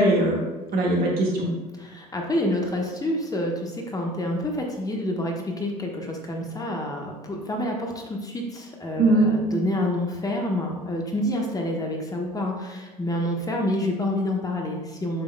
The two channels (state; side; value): normal; both; correlation 0.51